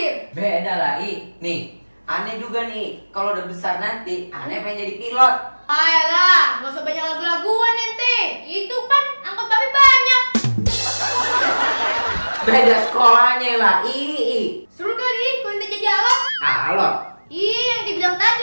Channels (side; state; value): both; inverted; correlation -1.00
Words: Beda lah, I. Nih, aneh juga nih, kalau udah besar nanti, aneh pengen jadi pilot. Ayolah, gak usah banyak lagu-laguan ente. Itu kan angkot babi banyak. Beda sekolahnya lah, I. Seru kali kalau ente jadi alat. Alot, Ih, yang dibilang